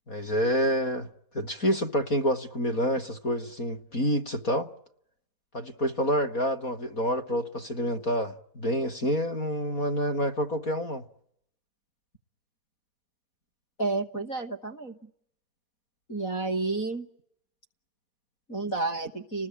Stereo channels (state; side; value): late; right; 4.2 ms